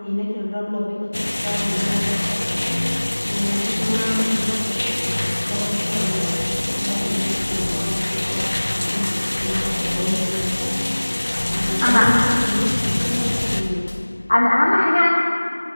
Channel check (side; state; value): both; inverted; correlation -1.00